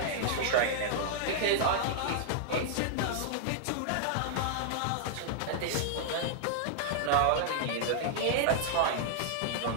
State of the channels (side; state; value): both; different; correlation -0.01